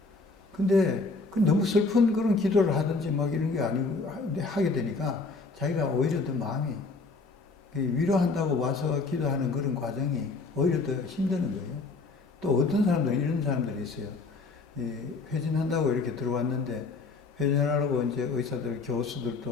근데 너무 슬픈 그런 기도를 하든지 막 이런 게 아니고 하게 되니까 자기가 오히려 더 마음이 위로한다고 와서 기도하는 그런 과정이 오히려 더 힘드는 거예요. 또 어떤 사람들은 이런 사람들이 있어요. 회진한다고 이렇게 들어왔는데 회진하라고 이제 의사들,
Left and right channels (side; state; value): right; quieter; 3.9 dB